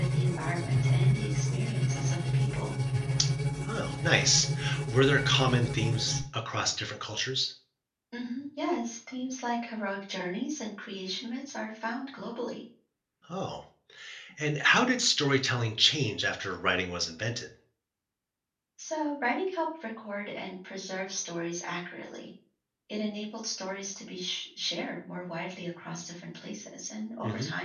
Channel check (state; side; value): identical; both; correlation 1.00